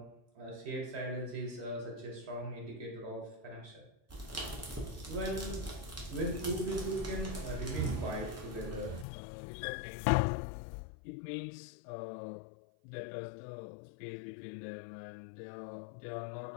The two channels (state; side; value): drops out; right; at 9.1 s